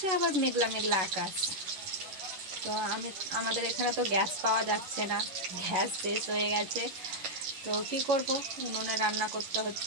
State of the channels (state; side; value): late; left; 11 ms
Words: আবার মেঘলা মেঘলা আকাশ। তো আমাদের এখানে তো গ্যাস পাওয়া যাচ্ছে না, গ্যাস শেষ হয়ে গেছে। তো কি করব, উনুনে রান্না করতে